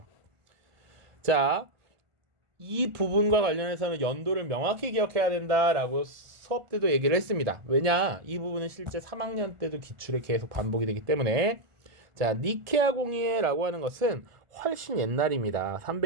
자, 이 부분과 관련해서는 연도를 명확히 기억해야 된다라고 수업 때도 얘기를 했습니다. 왜냐? 이 부분은 실제 3학년 때도 기출에 계속 반복이 되기 때문에. 자, 니케아 공의회라고 하는 것은 훨씬 옛날입니다.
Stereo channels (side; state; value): left; late; 1.5 ms